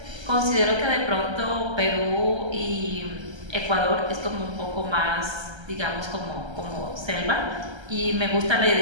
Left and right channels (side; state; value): left; late; 1.3 ms